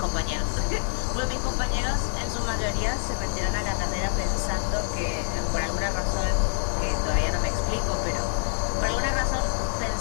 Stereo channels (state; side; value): silent; right; 61 dB below the other